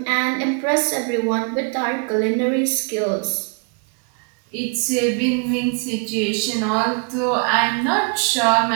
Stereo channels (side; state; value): left; quieter; 39.3 dB